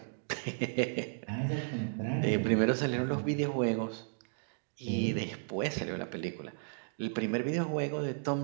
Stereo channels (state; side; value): silent; left; digital silence